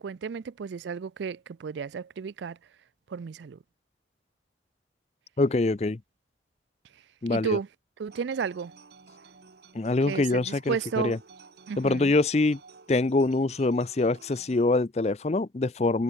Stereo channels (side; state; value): both; normal; correlation 0.49